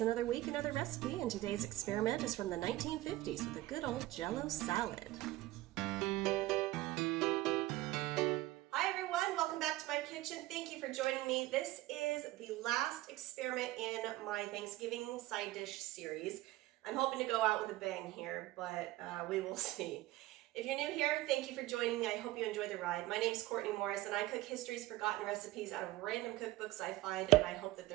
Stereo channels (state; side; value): quieter; left; 17.4 dB